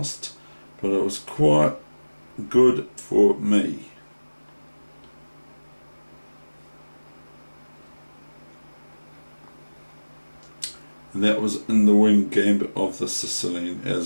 but it was quite good for me. And that was in the wing gambit of the Sicilian,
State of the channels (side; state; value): both; inverted; correlation -1.00